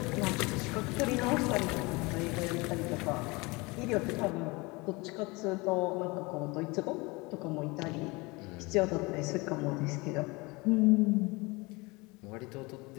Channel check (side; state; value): right; quieter; 25.1 dB